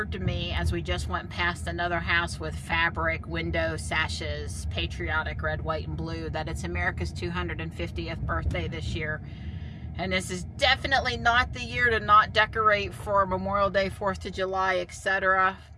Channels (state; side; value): identical; both; correlation 1.00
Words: to me as we just went past another house with fabric window sashes, patriotic red, white, and blue, that it's America's 250th birthday this year. And this is definitely not the year to not decorate for Memorial Day, 4th of July, etc.